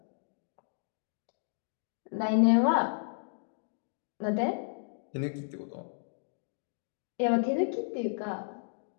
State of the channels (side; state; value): right; silent; digital silence